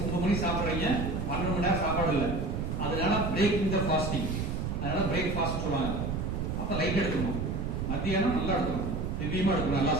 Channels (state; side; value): noise; right; rumble, 2 dB below the sound